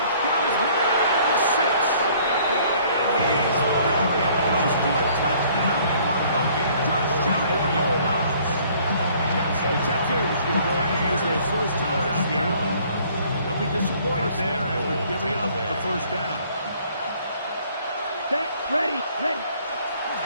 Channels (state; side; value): inverted; both; correlation -0.58